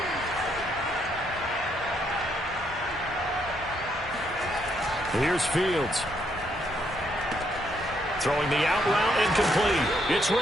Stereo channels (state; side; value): normal; both; correlation 0.74